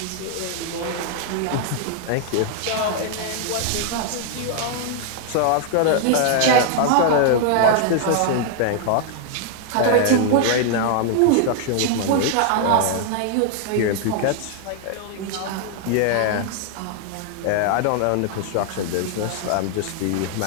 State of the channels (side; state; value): both; different; correlation 0.00